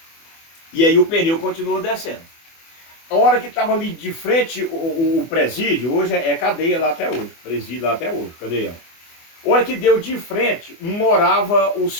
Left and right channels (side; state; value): right; late; 24 ms